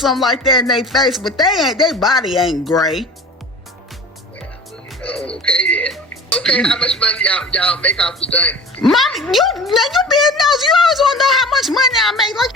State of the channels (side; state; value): both; normal; correlation 0.39